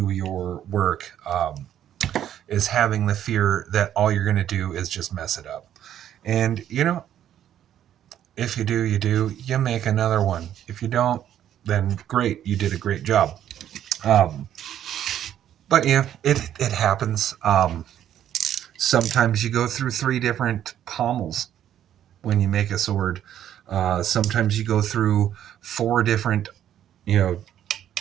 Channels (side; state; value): left; quieter; 10.8 dB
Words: your work, is having the fear that all you're going to do is just mess it up. And, you know, if you do, you do. You make another one. If you don't, then great. You did a great job. But yeah, it happens. Sometimes you go through 3 different pommels when you make a sword. Sometimes you go through 4 different,